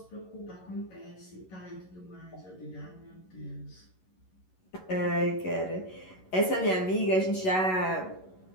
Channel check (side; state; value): right; late; 11 ms